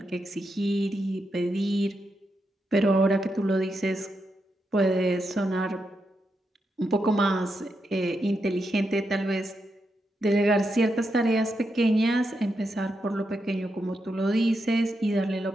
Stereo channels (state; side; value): normal; both; correlation 0.84